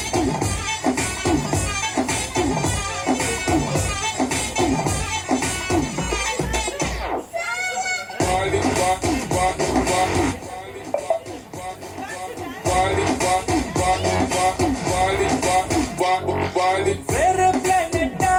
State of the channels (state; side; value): identical; both; correlation 1.00